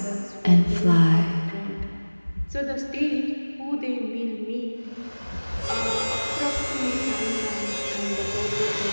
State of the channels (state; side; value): inverted; both; correlation -1.00